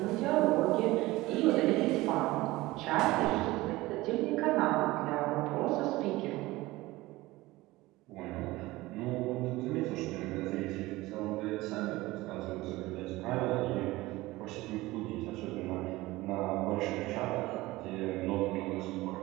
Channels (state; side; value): quieter; left; 19.3 dB